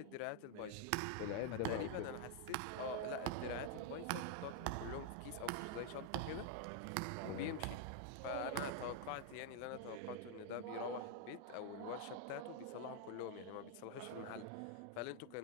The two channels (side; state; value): both; different; correlation 0.00